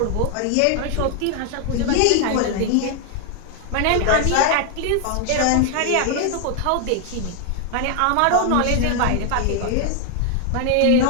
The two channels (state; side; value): different; both; correlation 0.00